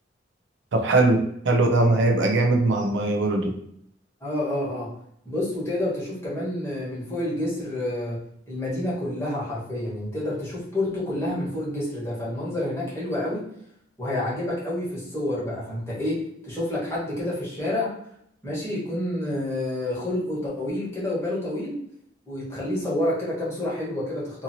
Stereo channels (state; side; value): normal; both; correlation 0.55